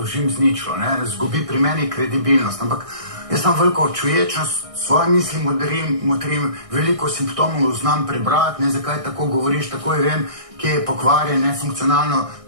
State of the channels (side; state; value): left; late; 1.6 ms